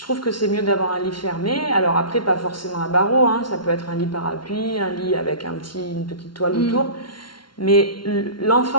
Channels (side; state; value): right; late; 0.72 ms